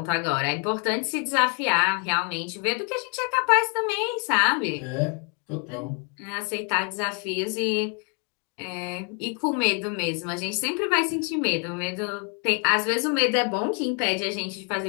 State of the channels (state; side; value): quieter; right; 37.8 dB